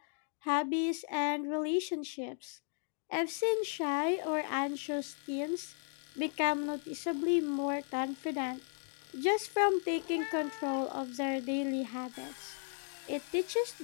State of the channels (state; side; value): silent; right; 54 dB below the other